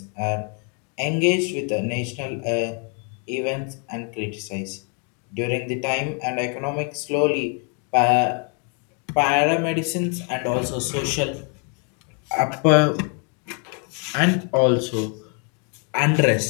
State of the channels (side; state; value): right; quieter; 38.8 dB